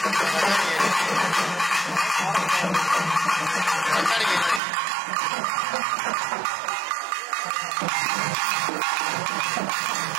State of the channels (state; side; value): drops out; left; at 4.6 s